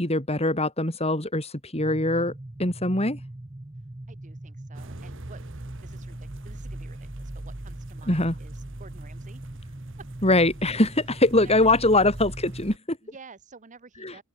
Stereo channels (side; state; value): both; normal; correlation 0.39